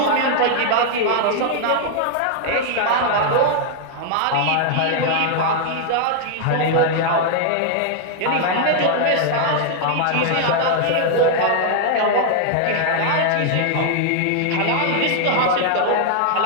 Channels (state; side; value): different; both; correlation 0.00